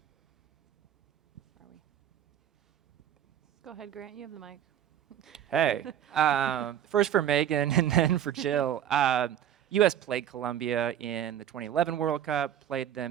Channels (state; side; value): quieter; left; 10.4 dB